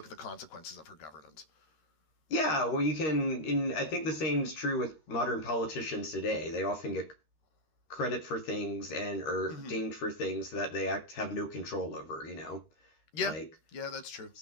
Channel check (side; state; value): right; late; 13 ms